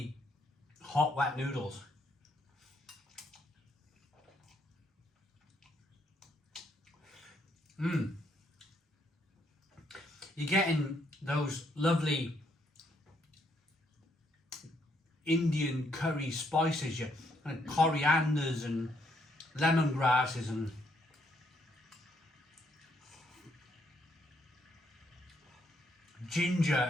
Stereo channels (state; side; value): normal; both; correlation 0.73